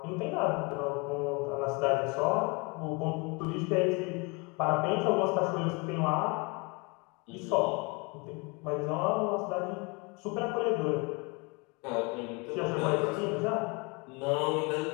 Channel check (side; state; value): right; quieter; 29.5 dB